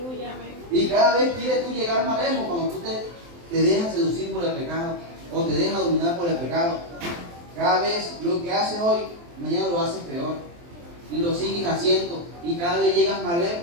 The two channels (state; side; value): late; left; 23 ms